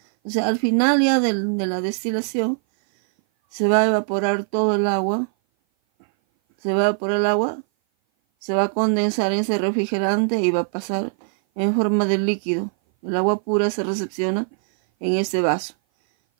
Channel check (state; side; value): silent; left; 58 dB below the other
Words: O sea, al final ya de la destilación se va a evaporar todo el agua, se va a condensar en ese refrigerante y va a pasar en forma de líquido. El agua pura se recepciona en este vaso.